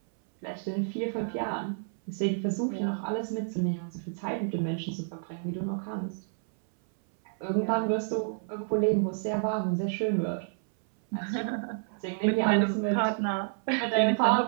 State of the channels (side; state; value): left; silent; 58 dB below the other